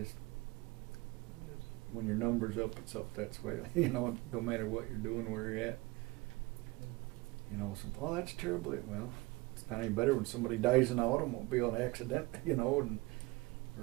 when your number's up, it's up. That's why, you know, no matter what you're doing, where you're at. You know, oh, that's terrible. Well, it's not any better when somebody dies in an automobile accident, you know, and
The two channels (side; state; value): left; quieter; 22.3 dB